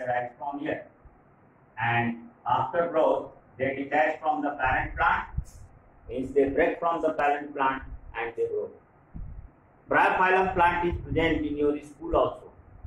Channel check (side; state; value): both; identical; correlation 1.00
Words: from here. And after growth, they detach from the parent plant, means they break from the parent plant and they grow. Bryophyllum plant is present in your school also.